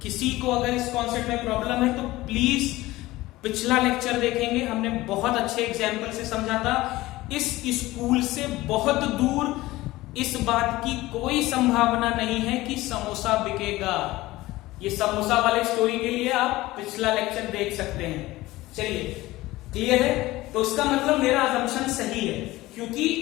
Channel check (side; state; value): right; quieter; 18.3 dB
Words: किसी को अगर इस कॉन्सेप्ट में प्रॉब्लम है तो प्लीज पिछला लेक्चर देखेंगे, हमने बहुत अच्छे एग्जाम्पल से समझा था। इस स्कूल से बहुत दूर इस बात की कोई संभावना नहीं है कि समोसा बिकेगा। ये समोसा वाले स्टोरी के लिए आप पिछला लेक्चर देख सकते हैं। चलिए, क्लियर है? तो इसका मतलब मेरा अजम्पशन सही है, क्योंकि